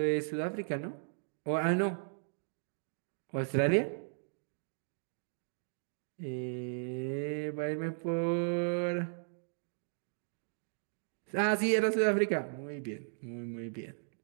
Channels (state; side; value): silent; left; digital silence